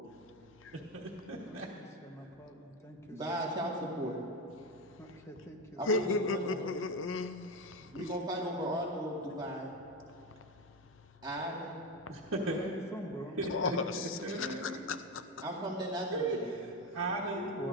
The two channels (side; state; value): both; normal; correlation 0.15